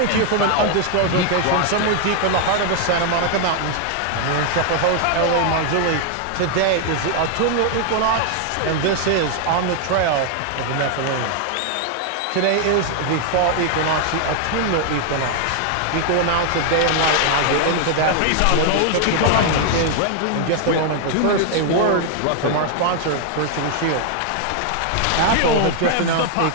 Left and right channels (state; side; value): different; both; correlation 0.00